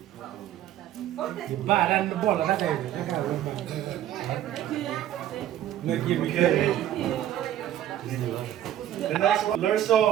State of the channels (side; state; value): left; quieter; 12.0 dB